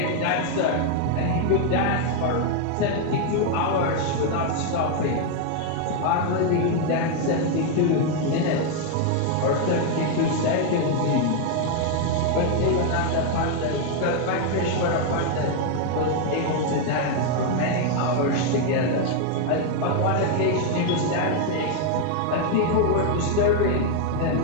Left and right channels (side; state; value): both; different; correlation 0.01